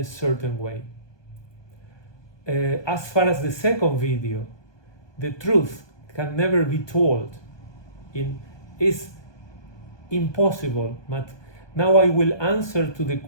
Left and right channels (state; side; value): late; right; 1.2 ms